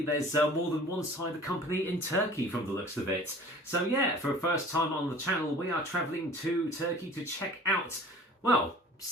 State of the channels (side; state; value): both; normal; correlation 0.46